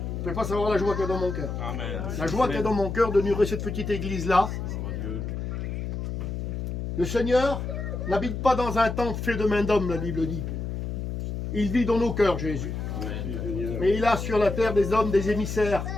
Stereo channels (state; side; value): noise; left; hum, 4 dB below the sound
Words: pouvez pas savoir la joie qu'il y a dans mon cœur. La joie qu'il y a dans mon cœur de nourrir cette petite église-là. Le Seigneur n'habite pas dans un temple fait de main d'homme, la Bible dit. Il vit dans nos cœurs, Jésus. Mais il a sur la terre des hommes, des émissaires,